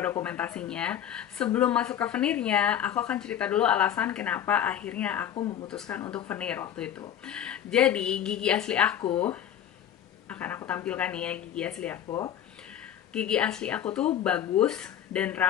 dokumentasinya. Sebelum masuk ke veneernya, aku akan cerita dulu alasan kenapa akhirnya aku memutuskan untuk veneer waktu itu. Jadi gigi asli aku, akan aku tampilkan nih ya gigi asli aku. Gigi asli aku tuh bagus dan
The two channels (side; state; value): right; quieter; 10.2 dB